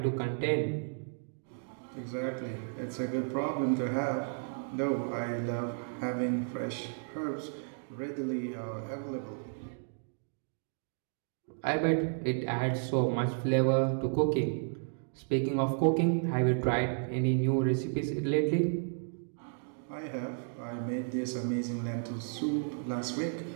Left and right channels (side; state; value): left; silent; digital silence